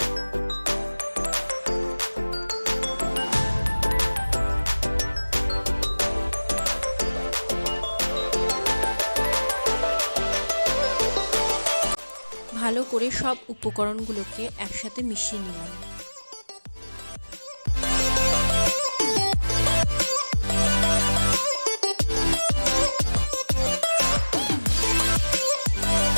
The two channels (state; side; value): inverted; both; correlation -1.00